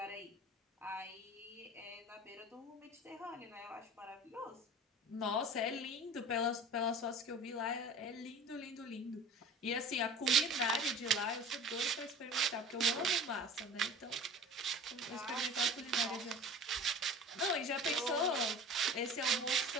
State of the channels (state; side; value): normal; both; correlation 0.39